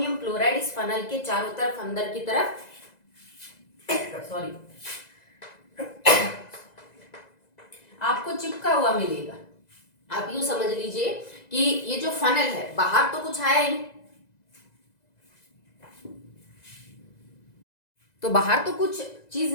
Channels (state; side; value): late; right; 2.0 ms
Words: क्लोराइड इस फनल के चारों तरफ अंदर की तरफ सॉरी आपको चिपका हुआ मिलेगा। आप यूं समझ लीजिए कि ये जो फनल है बाहर तो कुछ आया ही नहीं, तो बाहर तो कुछ चीज